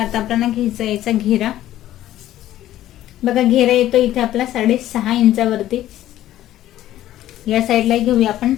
आपल्याला घ्यायचा याचा घेरा. बघा, घेरा येतो इथे आपला 6.5 इंचावरती. या साईडला घेऊया आपण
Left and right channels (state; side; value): quieter; right; 13.4 dB